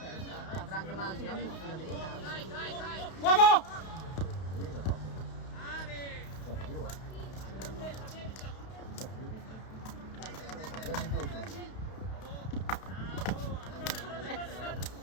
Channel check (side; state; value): right; late; 32 ms